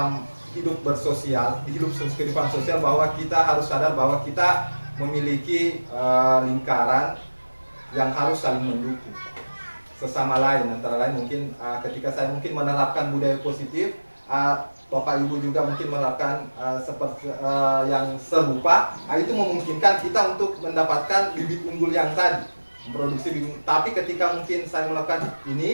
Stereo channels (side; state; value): both; inverted; correlation -1.00